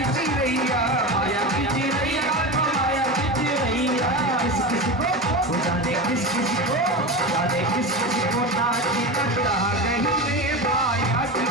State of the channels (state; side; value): normal; both; correlation 0.23